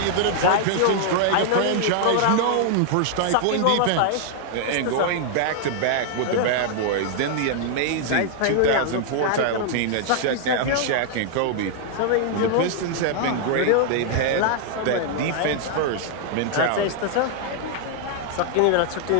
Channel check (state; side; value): different; both; correlation -0.01